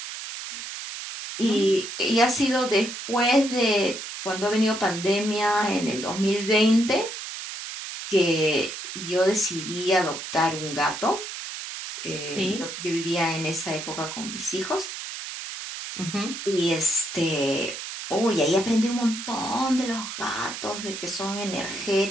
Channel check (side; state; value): right; noise; hiss, 8 dB below the sound